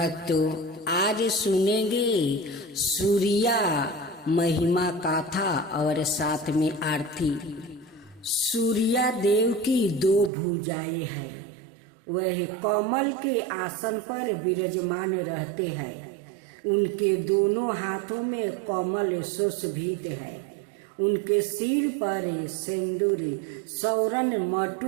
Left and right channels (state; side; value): drops out; left; at 10.3 s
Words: आज सुनेंगे सूर्या महिमा गाथा और साथ में आरती। सूर्या देव की दो भुजाएं हैं, वह कमल के आसन पर विराजमान रहते हैं। उनके दोनों हाथों में कमल सुशोभित है। उनके सिर पर सिंदूर सौरन